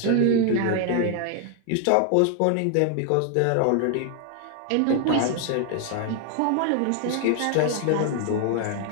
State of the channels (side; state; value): both; different; correlation 0.00